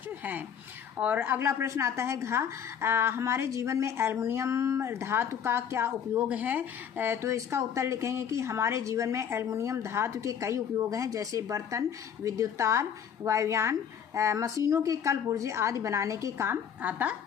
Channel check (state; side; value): quieter; right; 8.0 dB